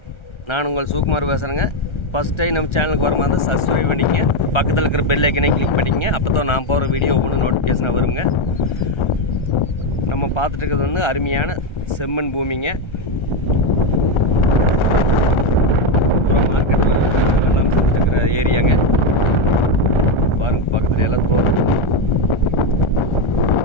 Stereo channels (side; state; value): right; late; 1.3 ms